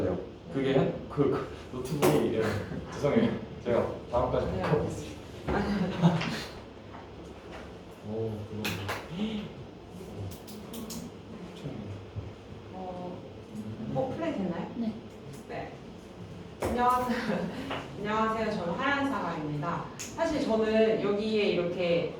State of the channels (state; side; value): identical; both; correlation 1.00